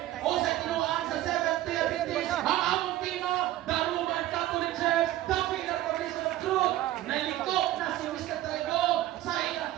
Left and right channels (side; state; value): left; quieter; 14.7 dB